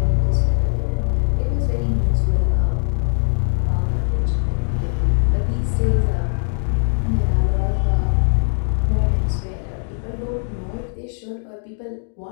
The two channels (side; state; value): right; silent; digital silence